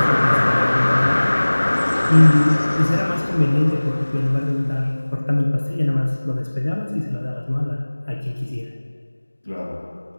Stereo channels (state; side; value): inverted; both; correlation -1.00